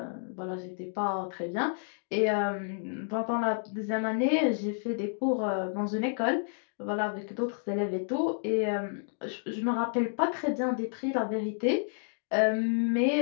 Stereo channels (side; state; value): right; silent; digital silence